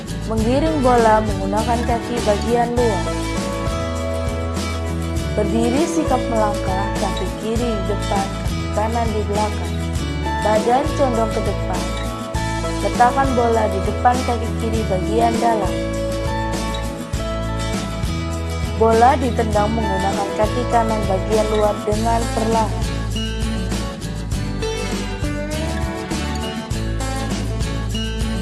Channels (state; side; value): identical; both; correlation 1.00